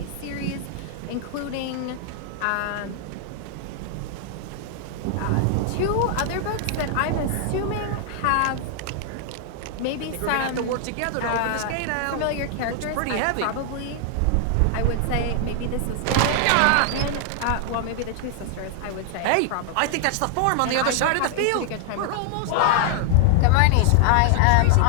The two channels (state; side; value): different; both; correlation 0.00